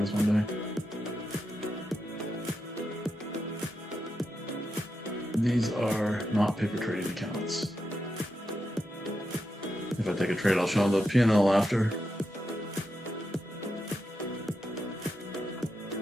one day. These are not paper trading accounts. If I take a trade, I'll show them the P&L after.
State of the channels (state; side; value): normal; both; correlation 0.86